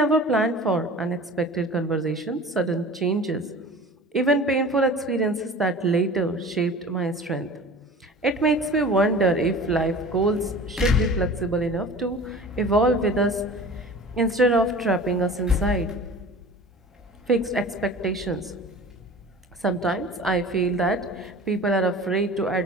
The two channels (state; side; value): normal; both; correlation 0.40